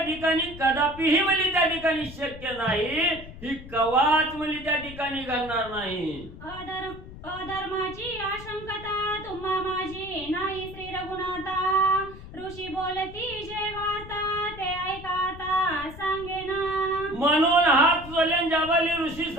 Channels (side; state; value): left; noise; rumble, 15 dB below the sound